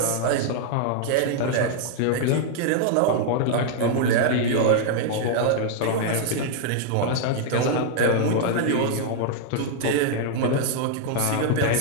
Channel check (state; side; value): different; both; correlation 0.00